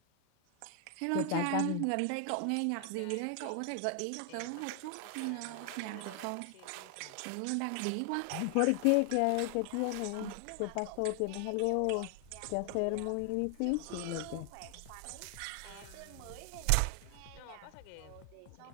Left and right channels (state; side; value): different; both; correlation 0.00